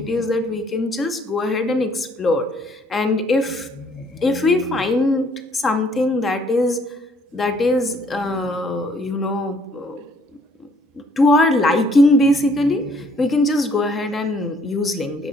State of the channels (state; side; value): normal; both; correlation 0.63